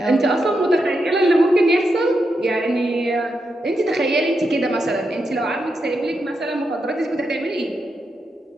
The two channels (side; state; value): both; normal; correlation 0.85